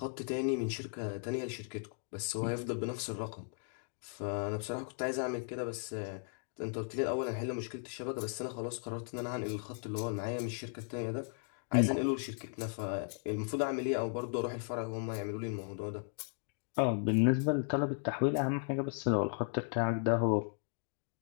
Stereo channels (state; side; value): silent; right; 54 dB below the other